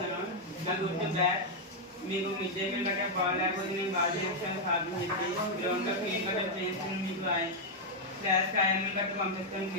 మీకు మిడ్ డే మీల్ గట్రా బాగాలేకపోతే నేను బాగా చేస్తాను సాధన చెప్పి గ్రౌండ్లో క్లీన్ గట్రా చేస్తాను. మీకు క్లాస్ కాయలు గట్రా పంపిస్తాను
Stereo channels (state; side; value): normal; both; correlation -0.02